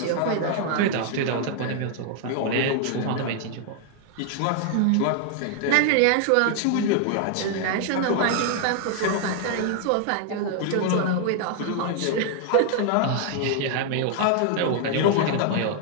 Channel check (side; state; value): both; different; correlation 0.00